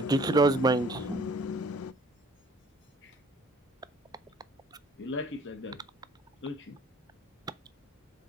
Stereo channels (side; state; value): both; normal; correlation 0.54